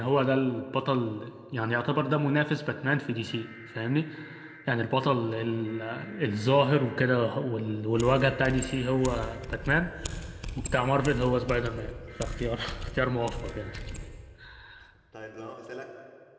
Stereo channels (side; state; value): both; identical; correlation 1.00